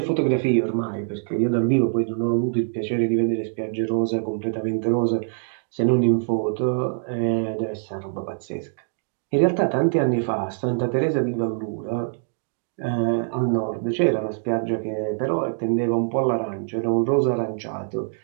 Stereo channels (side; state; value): left; silent; digital silence